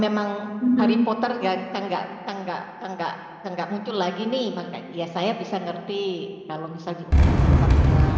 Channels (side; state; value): both; identical; correlation 1.00